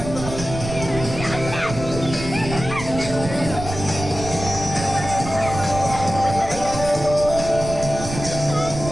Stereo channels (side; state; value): right; noise; rumble, 8 dB below the sound